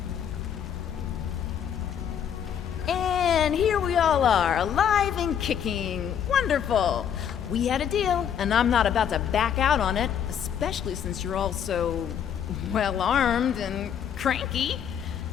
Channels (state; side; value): quieter; right; 8.6 dB